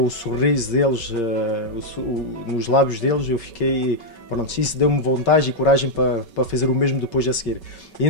o sorriso deles, nos lábios deles, eu fiquei, pronto, isso deu-me vontade e coragem para fazer o mesmo depois a seguir. E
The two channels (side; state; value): right; late; 5.3 ms